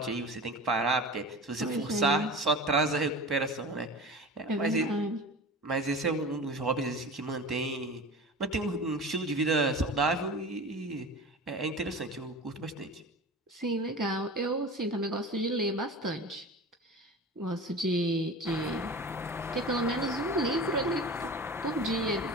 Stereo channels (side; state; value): both; normal; correlation 0.34